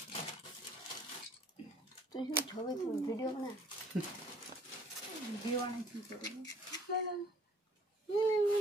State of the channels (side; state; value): both; normal; correlation 0.56